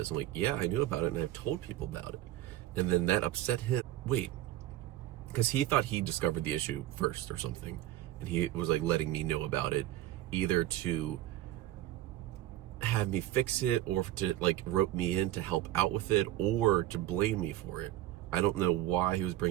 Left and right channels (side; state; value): left; quieter; 14.3 dB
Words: I'm like, yeah, I knew about it, and I've told people about it. And then that upset him. Wait, because he thought he discovered the issue first or something, and he was like letting me know about it, either to have me fix it, or to like rope me in to help out with it, or to blame me for it. I don't know why he was